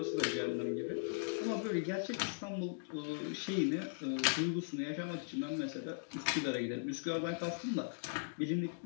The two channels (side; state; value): right; silent; digital silence